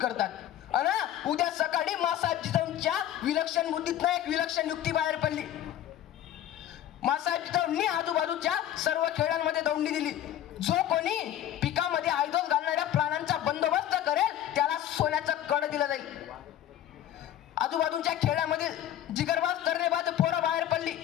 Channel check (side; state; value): right; quieter; 11.8 dB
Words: करतात. अन उद्या सकाळी मासाहेब जिजाऊंच्या विलक्षण बुद्धीतनं एक विलक्षण युक्ती बाहेर पडली. मासाहेब जिजाऊंनी आजूबाजूच्या सर्व खेड्यांमध्ये दौंडी दिली. जो कोणी पिकामध्ये आयदोस घालणाऱ्या प्राण्यांचा बंदोबस्त करेल त्याला सोन्याचं कड दिलं जाईल. आजूबाजूच्या खेड्यामध्ये जिगरबाज तर्रेबाज पोरं बाहेर पडली